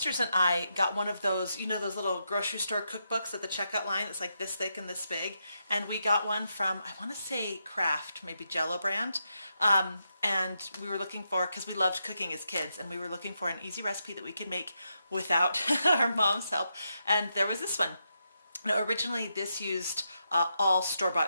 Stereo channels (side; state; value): both; inverted; correlation -0.83